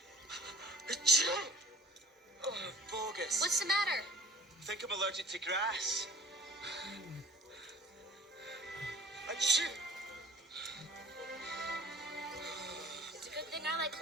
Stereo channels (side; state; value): both; normal; correlation 0.49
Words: Oh, bogus. What's the matter? I think I'm allergic to grass. Achoo! It's a good thing I like